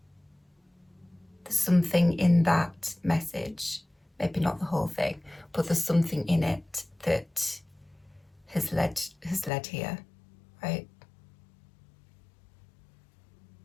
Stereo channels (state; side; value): drops out; right; at 9.5 s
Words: There's something in that message, maybe not the whole thing, but there's something in it that has led here, right?